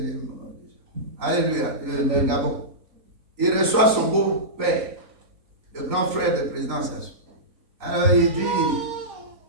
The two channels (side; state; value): left; late; 3.9 ms